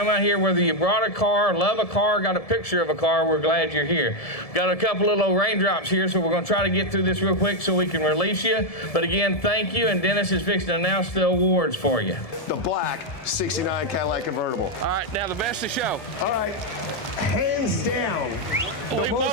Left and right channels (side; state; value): right; late; 1.7 ms